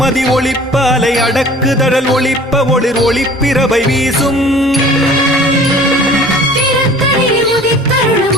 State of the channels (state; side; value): normal; both; correlation 0.48